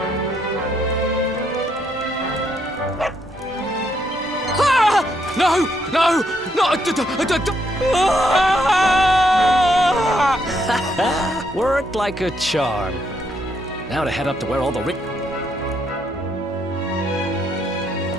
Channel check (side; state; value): both; normal; correlation 0.75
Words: Ah! No! No! Worked like a charm. Now to head up to where all the rich...